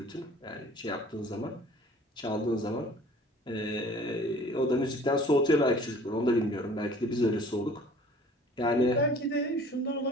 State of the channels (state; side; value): normal; both; correlation 0.49